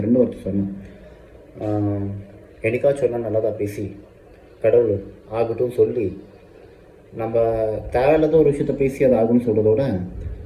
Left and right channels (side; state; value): both; identical; correlation 1.00